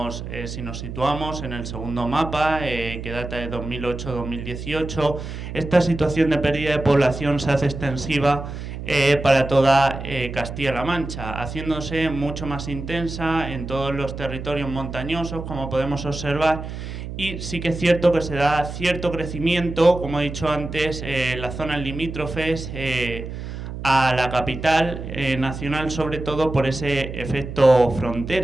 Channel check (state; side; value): noise; right; hum, 8 dB below the sound